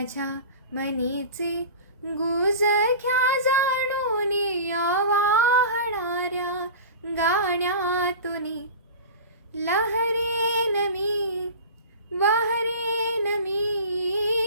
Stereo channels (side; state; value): both; inverted; correlation -0.35